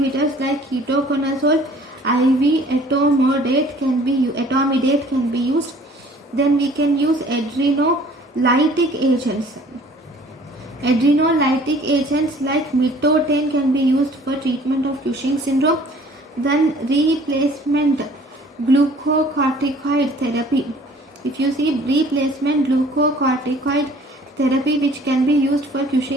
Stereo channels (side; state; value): both; normal; correlation 0.53